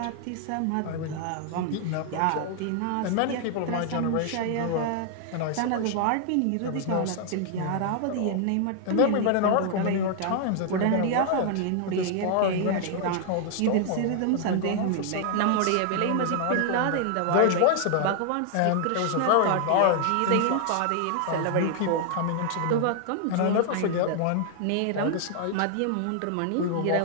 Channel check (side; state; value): both; different; correlation 0.00